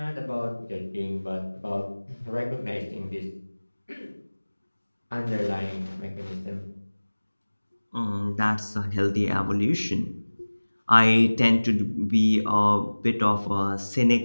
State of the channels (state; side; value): inverted; both; correlation -1.00